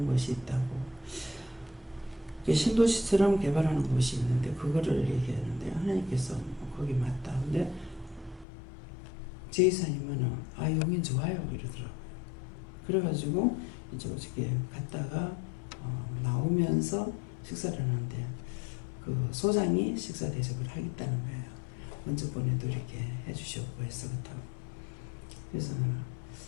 것이 있다고. 신도시처럼 개발하는 곳이 있는데 그거를 얘기했는데 하나님께서 거기 맞다. 근데 제이사님은 용인 좋아요 이러더라고요. 그래가지고 이제 어저께 갔다가 나오면서 식사를 하는데 그 소장이 식사 대접을 하겠다는 거예요. 먼저 보내도 이렇게 해주셨고 해서 그렇다고. 그래서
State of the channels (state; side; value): drops out; right; at 8.5 s